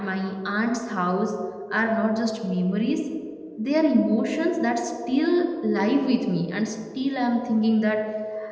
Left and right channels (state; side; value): identical; both; correlation 1.00